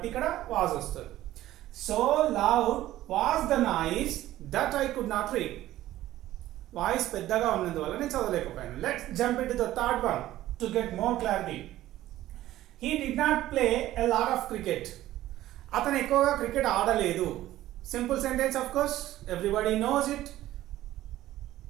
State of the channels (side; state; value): left; quieter; 14.6 dB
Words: ఇక్కడ వాజ్ వస్తుంది. So loud was the noise that I could not read. Voice పెద్దగా ఉన్నందువల్ల నేను చదవలేకపోయాను. Let's jump in to the third one to get more clarity. He did not play a lot of cricket. అతను ఎక్కువగా క్రికెట్ ఆడలేదు. Simple sentence, of course, everybody knows it.